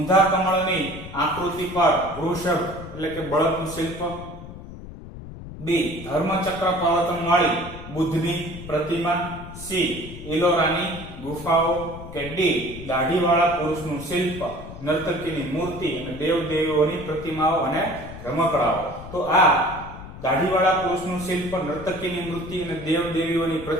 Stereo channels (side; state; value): left; noise; rumble, 13 dB below the sound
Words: કમળની આકૃતિ પર વૃષભ એટલે કે બળદનું શિલ્પ. બી ધર્મચક્ર પર્વતનવાળી બુદ્ધની પ્રતિમા. સી ઇલોરાની ગુફાઓ. કે ડી દાઢીવાળા પુરુષનું શિલ્પ, નર્તકીની મૂર્તિ અને દેવદેવીઓની પ્રતિમાઓ અને રમકડાઓ. તો આ દાઢીવાળા પુરુષનું શિલ્પ, નર્તકીની મૂર્તિ અને દેવદેવીઓની